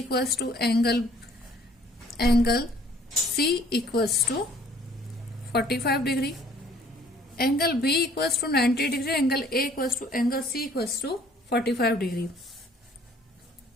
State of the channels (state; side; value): normal; both; correlation 0.58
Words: to angle C equals to 45 degree. Angle B equals to 90 degree. Angle A equals to angle C equals to 45 degree.